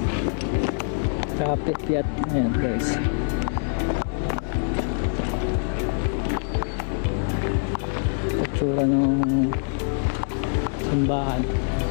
Kapit-piat. Ayan guys. Itsura ng simbahan.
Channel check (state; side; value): silent; right; digital silence